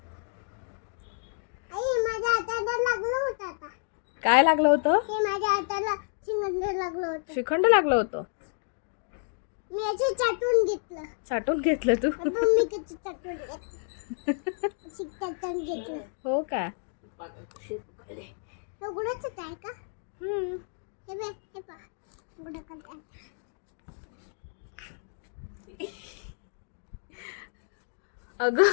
आई माझ्या हाताला लागलं होतं आता. काय लागलं होतं? हे माझ्या हाताला शिंगंड लागलं होतं. श्रीखंड लागलं होतं. मी याचे चाटून घेतलं. साठवून घेतलं तू? आपण मी किती चाटून घेतलं. चाटून घेतलं. हो का? उघडच आहे का? हे बघ, हे पहा. उघडं करते. अगं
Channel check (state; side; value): silent; right; digital silence